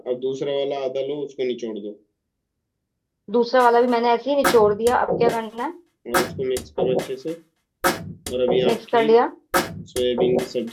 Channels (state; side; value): identical; both; correlation 1.00